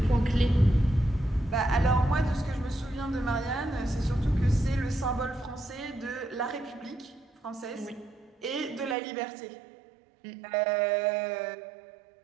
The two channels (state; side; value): drops out; left; at 9.0 s